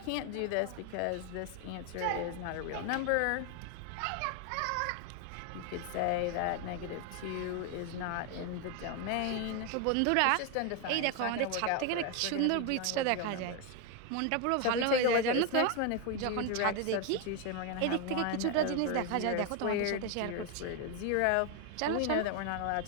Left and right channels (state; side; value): different; both; correlation 0.01